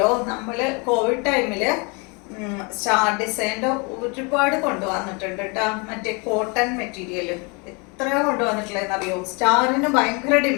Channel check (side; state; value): right; quieter; 31.2 dB